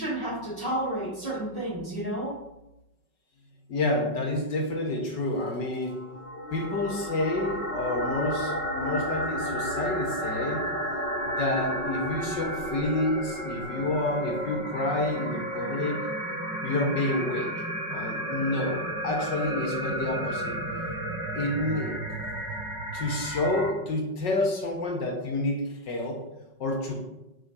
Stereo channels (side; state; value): right; late; 5.4 ms